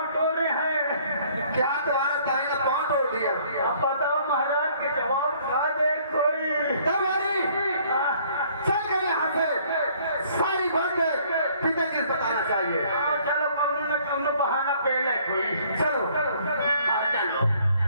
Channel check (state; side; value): inverted; both; correlation -0.60